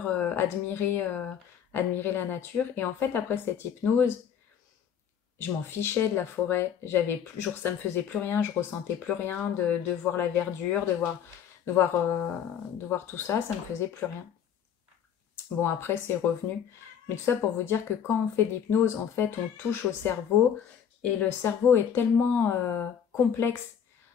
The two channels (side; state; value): right; quieter; 8.4 dB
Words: admirer la nature. Et en fait, après cette hypnose, je m'en fichais de la forêt. Ça me faisait plus rien, je ressentais plus rien de voir la verdure, de voir tout ça, ça me faisait plus rien. Bon, après, c'est revenu. Mais tout ça pour vous dire que quand on fait de l'hypnose, en fait, on touche au cerveau. Et le cerveau est tellement complexe.